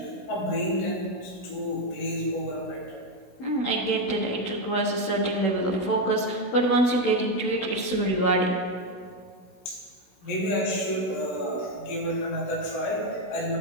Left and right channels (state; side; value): late; right; 16 ms